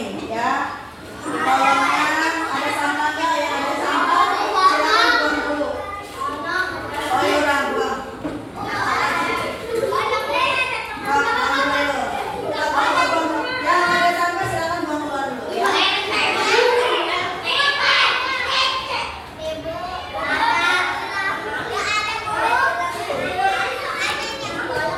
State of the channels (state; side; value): identical; both; correlation 1.00